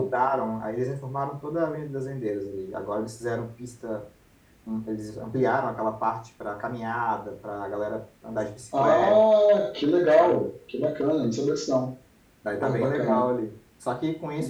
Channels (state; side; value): identical; both; correlation 1.00